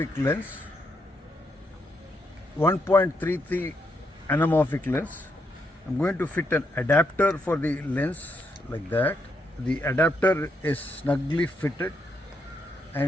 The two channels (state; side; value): normal; both; correlation 0.79